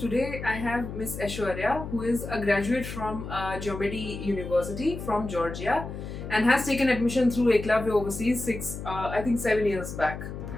I have Miss Aishwarya, who is a graduate from Geomedi University from Georgia and has taken admission through Eklavya Overseas 7 years back.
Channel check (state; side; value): noise; left; hum, 8 dB below the sound